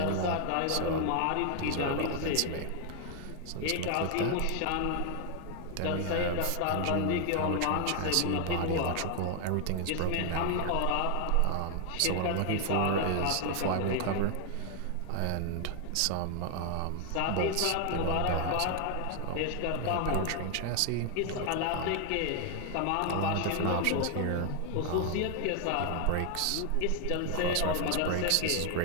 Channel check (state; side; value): different; both; correlation 0.00